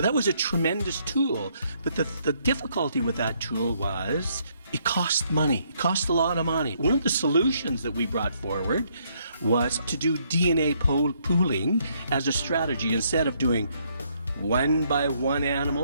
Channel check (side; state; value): both; inverted; correlation -0.70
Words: was a tremendous tool, but the difficulty with that tool was it cost money. It cost a lot of money. One of the solutions that we brought forward was to do DNA pooling as a strategy. Instead of doing one by one